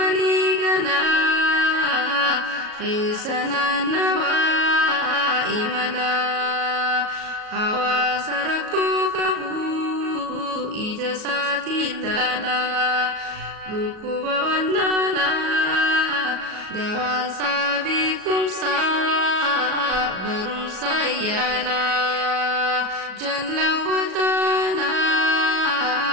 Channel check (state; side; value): late; left; 37 ms